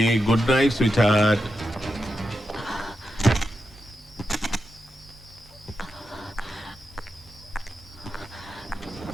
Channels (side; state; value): both; normal; correlation 0.87